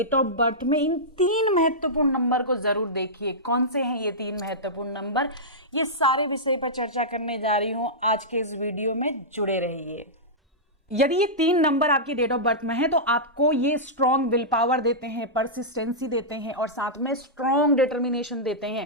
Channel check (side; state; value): both; normal; correlation -0.13